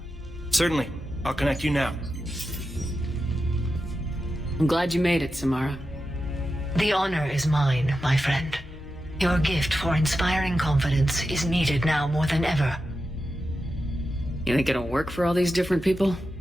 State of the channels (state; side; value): normal; both; correlation 0.90